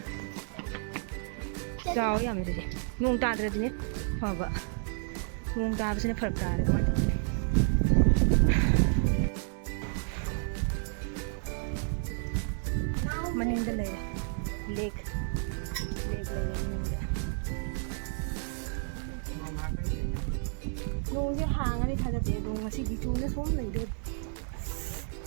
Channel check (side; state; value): left; silent; 57 dB below the other